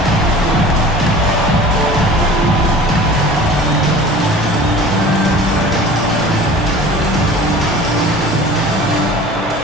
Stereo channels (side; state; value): both; normal; correlation 0.42